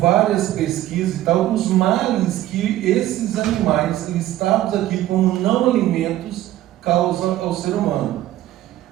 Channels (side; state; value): left; quieter; 14.3 dB